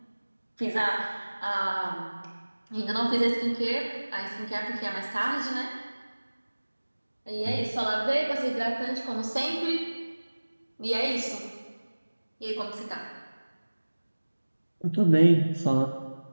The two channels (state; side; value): inverted; both; correlation -1.00